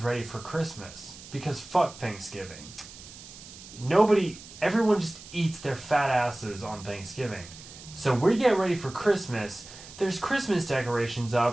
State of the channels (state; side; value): noise; right; hiss, 17 dB below the sound